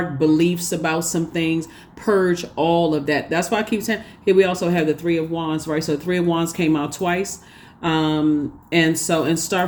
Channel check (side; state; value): both; identical; correlation 1.00